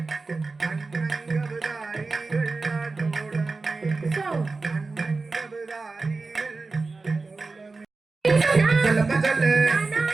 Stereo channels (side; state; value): left; quieter; 3.9 dB